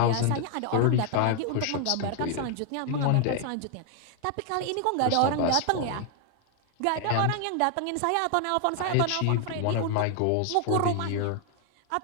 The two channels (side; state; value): both; different; correlation 0.00